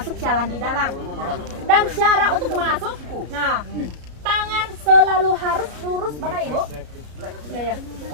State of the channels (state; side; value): late; left; 33 ms